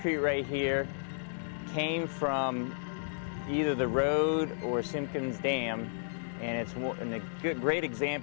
right here came from either the road or Simpkins Dam, and it's a great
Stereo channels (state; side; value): silent; right; digital silence